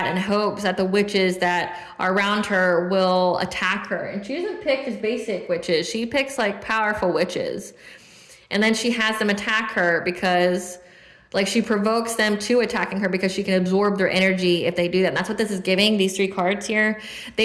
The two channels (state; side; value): identical; both; correlation 1.00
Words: in hopes that the witches that are around her will attack her. And she doesn't pick just basic witches. She picks powerful witches. And then she has them attack her because Like she provokes them to attacking her because she can absorb their energy if they do that. And that's what this is giving, these 3 cards here.